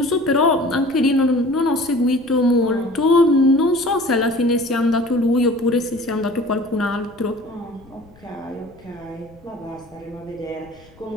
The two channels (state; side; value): noise; left; rumble, 27 dB below the sound